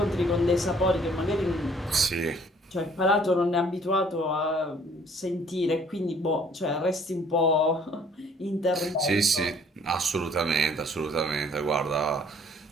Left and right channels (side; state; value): both; normal; correlation 0.58